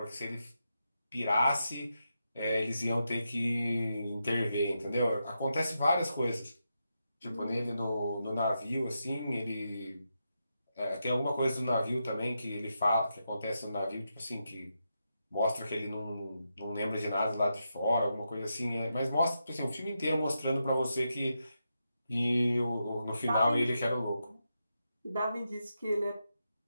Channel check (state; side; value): inverted; both; correlation -0.86